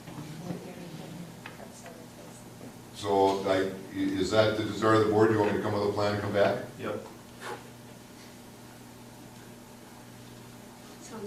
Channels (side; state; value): both; identical; correlation 1.00